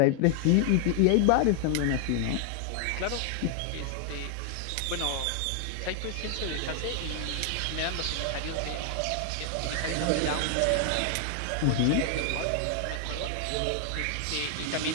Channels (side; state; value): both; different; correlation 0.00